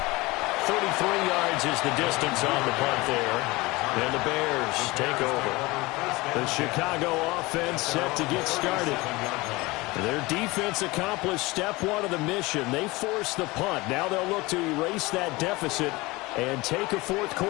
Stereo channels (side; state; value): right; quieter; 22.2 dB